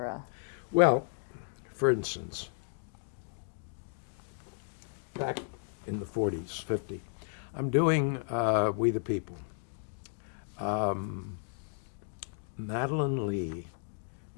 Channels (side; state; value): right; silent; digital silence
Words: Well, for instance, back in the 40s, 50, I'm doing We the People. Madeline Lee,